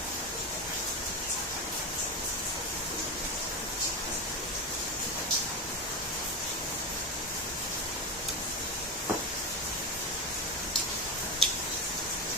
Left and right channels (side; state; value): both; normal; correlation 0.17